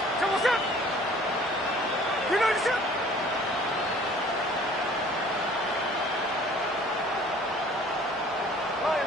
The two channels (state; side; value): normal; both; correlation 0.52